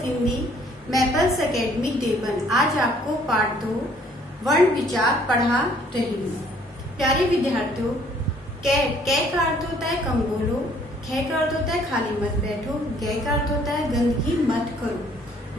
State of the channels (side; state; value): both; normal; correlation 0.60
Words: Hindi, Maples academy Deoband. आज आपको पाठ 2 वर्ण विचार पढ़ा रही हूँ। प्यारे विद्यार्थियों, कै का अर्थ होता है कम बोलो, खे का अर्थ होता है खाली मत बैठो, गै का अर्थ होता है गंदगी मत करो,